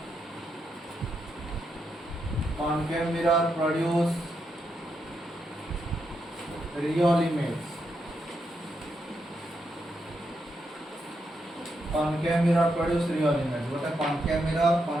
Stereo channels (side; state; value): both; normal; correlation 0.82